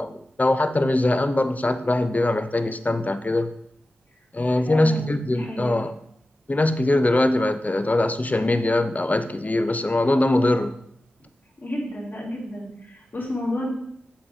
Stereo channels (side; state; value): both; normal; correlation 0.94